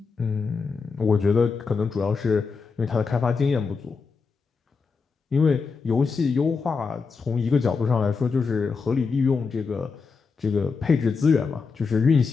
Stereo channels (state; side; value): quieter; right; 5.0 dB